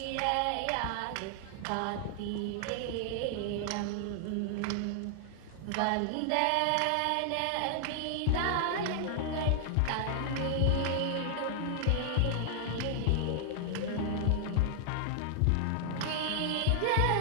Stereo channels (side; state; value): both; different; correlation 0.00